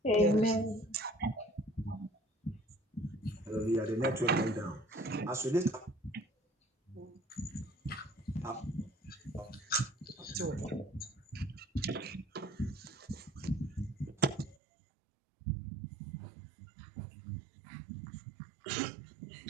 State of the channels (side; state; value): left; drops out; at 14.6 s